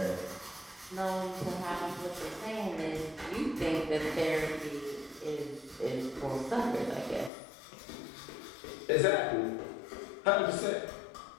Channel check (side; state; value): right; drops out; at 7.3 s